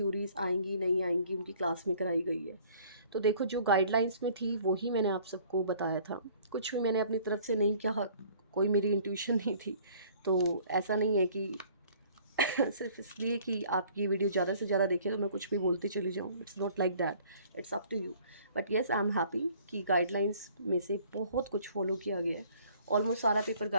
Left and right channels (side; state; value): both; inverted; correlation -0.55